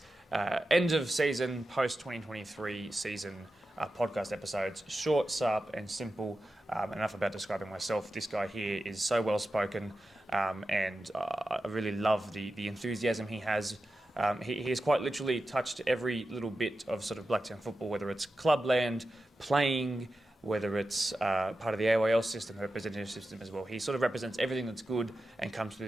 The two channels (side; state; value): both; normal; correlation 0.92